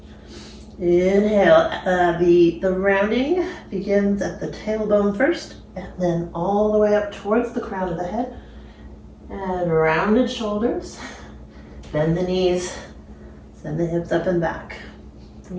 Inhale, the rounding begins at the tailbone first, and then all the way up towards the crown of the head. And rounded shoulders, bend the knees, send the hips up and back. We're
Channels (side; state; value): both; identical; correlation 1.00